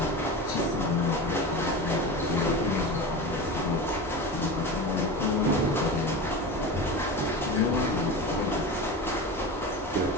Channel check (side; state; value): both; normal; correlation 0.27